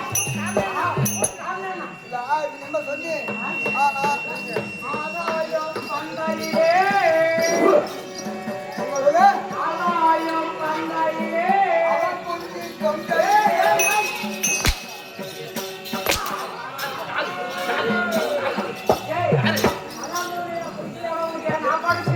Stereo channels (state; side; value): identical; both; correlation 1.00